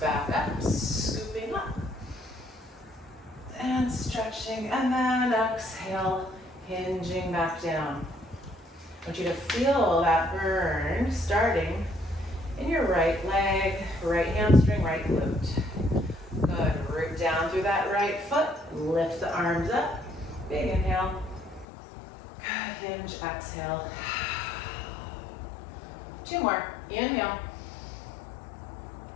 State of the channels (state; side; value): drops out; right; at 21.7 s